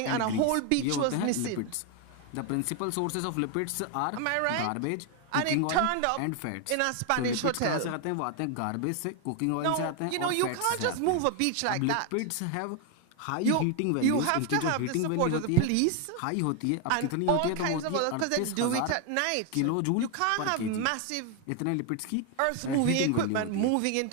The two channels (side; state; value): both; different; correlation 0.01